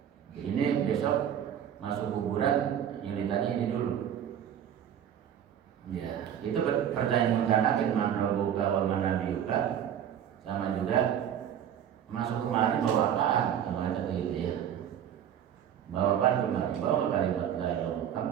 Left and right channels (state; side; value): quieter; left; 9.6 dB